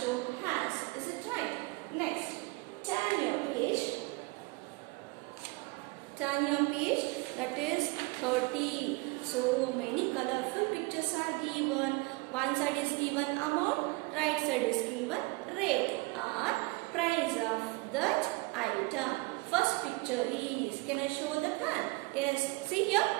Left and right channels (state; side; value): quieter; left; 25.0 dB